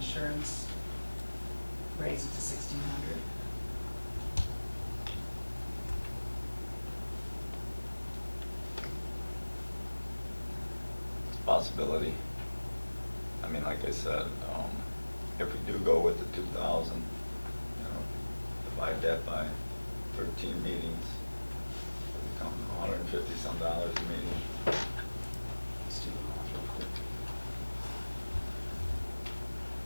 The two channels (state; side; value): inverted; both; correlation -1.00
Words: raise it to 1,600? Possibility. I mean, like I said, if we do go with the 2,000, you know, divide that by 13 meetings, it'll become $150 some a meeting. Let's do the math real quick.